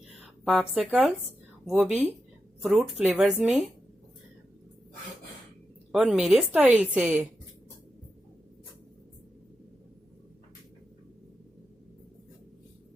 पॉप्सिकल्स, वो भी फ्रूट फ्लेवर्स में और मेरे स्टाइल से।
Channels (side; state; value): both; normal; correlation 0.88